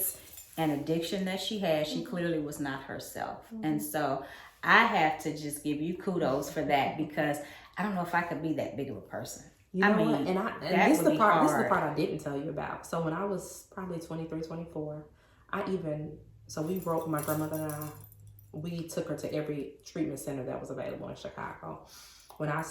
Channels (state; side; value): identical; both; correlation 1.00